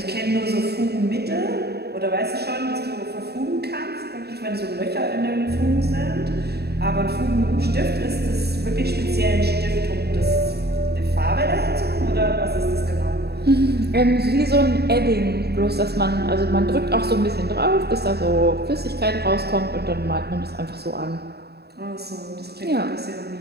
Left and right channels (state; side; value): late; left; 0.47 ms